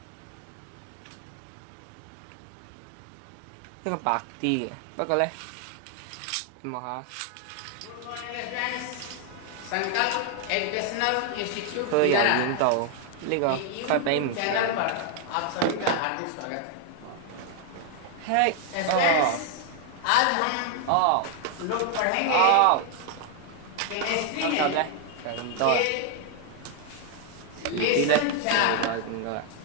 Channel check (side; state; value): both; different; correlation 0.00